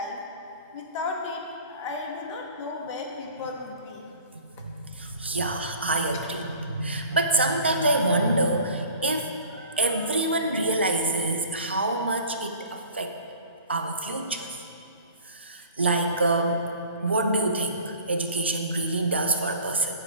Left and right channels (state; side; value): inverted; both; correlation -0.45